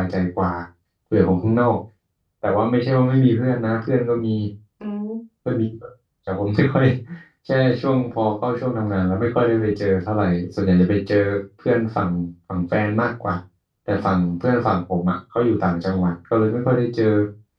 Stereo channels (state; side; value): identical; both; correlation 1.00